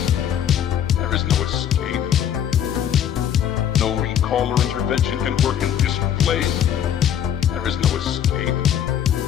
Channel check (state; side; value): quieter; right; 9.6 dB